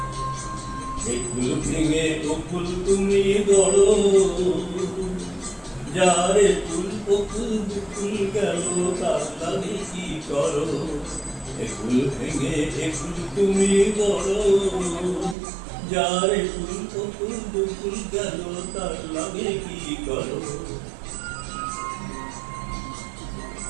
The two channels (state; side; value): drops out; left; at 15.4 s